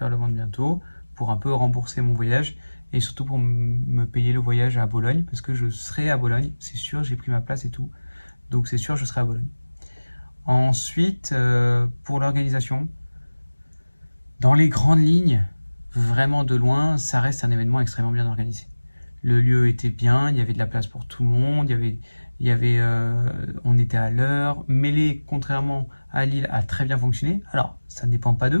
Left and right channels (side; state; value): both; inverted; correlation -1.00